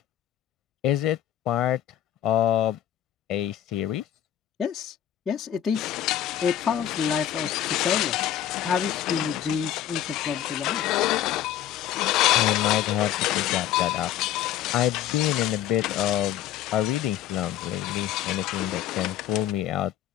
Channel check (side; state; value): right; quieter; 11.5 dB